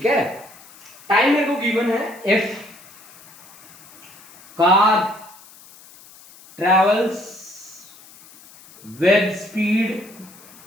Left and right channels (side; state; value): left; noise; hiss, 22 dB below the sound